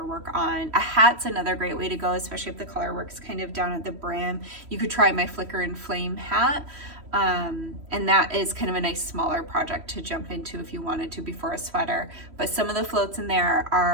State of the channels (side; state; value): left; late; 3.1 ms